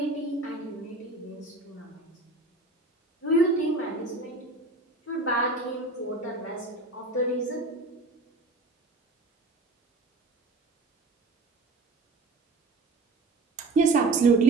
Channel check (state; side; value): quieter; left; 3.1 dB